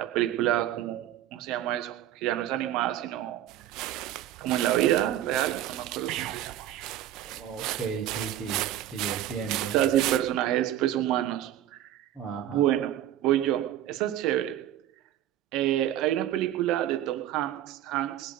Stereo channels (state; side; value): quieter; left; 12.2 dB